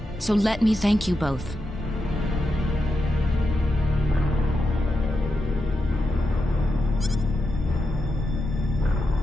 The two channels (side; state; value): both; normal; correlation 0.87